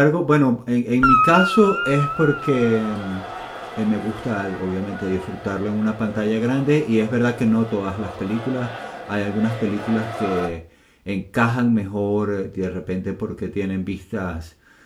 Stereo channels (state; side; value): identical; both; correlation 1.00